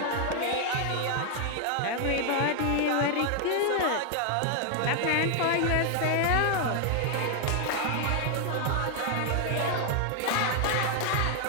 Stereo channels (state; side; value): different; both; correlation 0.00